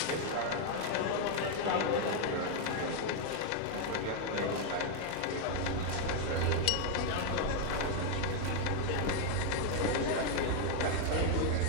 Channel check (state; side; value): different; both; correlation 0.00